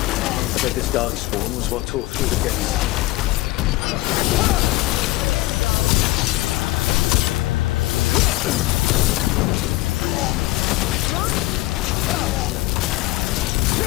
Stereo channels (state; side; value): quieter; right; 18.7 dB